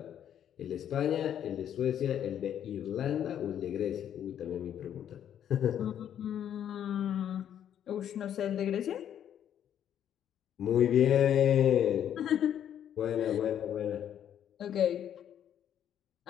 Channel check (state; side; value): quieter; right; 9.9 dB